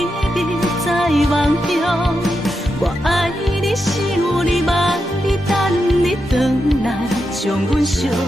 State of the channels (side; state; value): both; normal; correlation 0.86